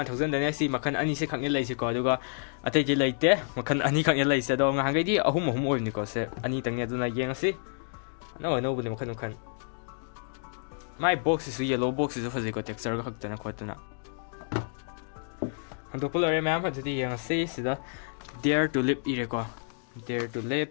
dane si makan ani se khang lai se ko aduga atai je laite makan ani khang lai se do ngange di ahum or ni ko se ani tang ne duna yeng si no bu ni makan kan my box is yellow box is fazi ko texture ko hakta na ko tuna Untuk pelari ma'am jadi yang sida dare to live ire ko dare to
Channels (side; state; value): right; silent; digital silence